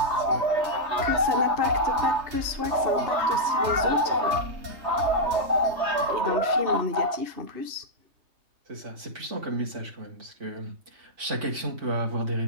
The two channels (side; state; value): left; late; 3.2 ms